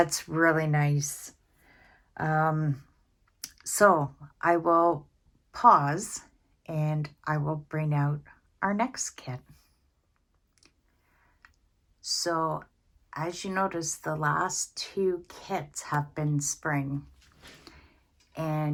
really nice. So I will pause and I will bring out our next kit. So as you notice, the last 2 kits have been spring.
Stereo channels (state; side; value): identical; both; correlation 1.00